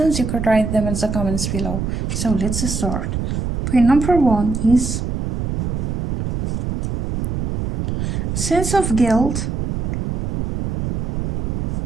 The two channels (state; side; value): noise; right; rumble, 2 dB below the sound